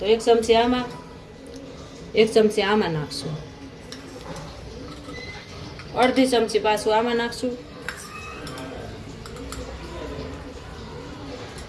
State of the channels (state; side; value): identical; both; correlation 1.00